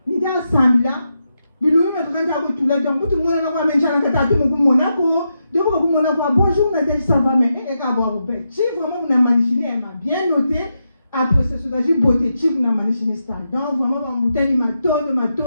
Nous avons assemblé là, nous avons tout là, donc tout le monde a même changé de tout le monde Monaco. Donc, bonjour, Nadège, ça va, mais elle est à boire au bec. Si vraiment vous avez manichiné, elle m'a bien noté. Après, c'est ce que j'ai beauté, si vous avez manichiné ça. Donc, vraiment, ma bouteille, ma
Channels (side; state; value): both; inverted; correlation -0.85